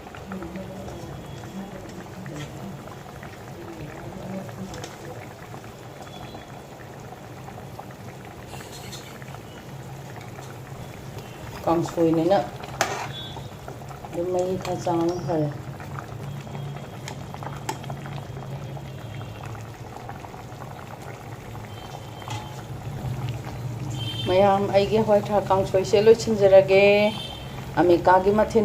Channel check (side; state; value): both; identical; correlation 1.00